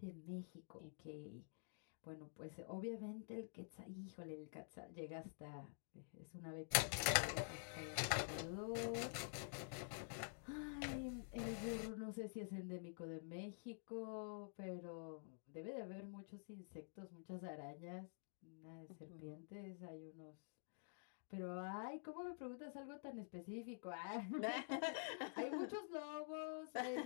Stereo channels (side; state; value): right; silent; digital silence